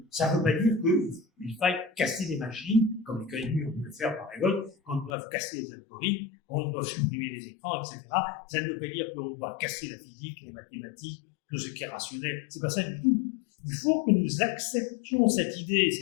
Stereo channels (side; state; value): right; drops out; at 5.1 s